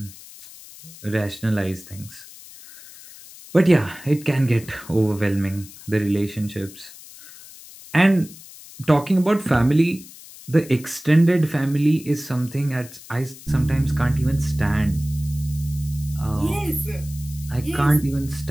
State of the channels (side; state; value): left; noise; hiss, 18 dB below the sound